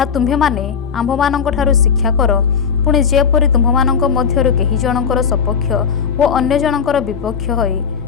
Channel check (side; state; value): right; quieter; 6.6 dB